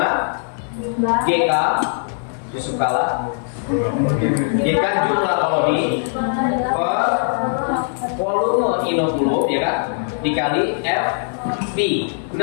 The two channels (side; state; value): right; silent; 66 dB below the other